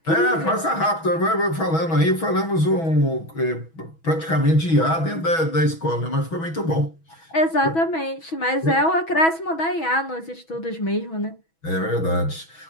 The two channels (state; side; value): late; right; 6.1 ms